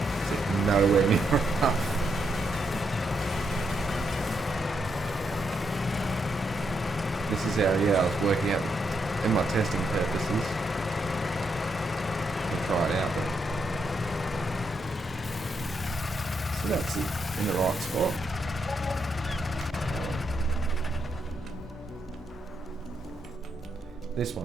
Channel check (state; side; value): normal; both; correlation 0.79